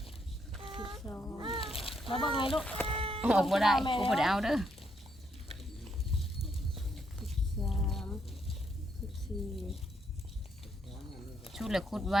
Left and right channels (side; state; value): both; normal; correlation 0.76